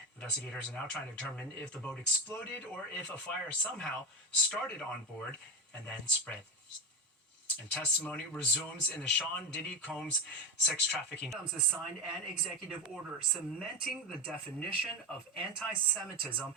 Investigators are now trying to determine if the boat exploded or if a fire somehow started on board and then spread. And testimony resumes in the Sean Diddy Combs sex trafficking. Combs has signed an executive order cementing the definition of anti-Semitism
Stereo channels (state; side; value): normal; both; correlation 0.15